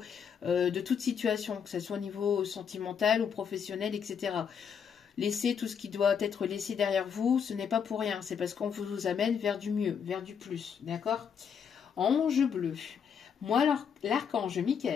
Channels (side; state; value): right; quieter; 7.2 dB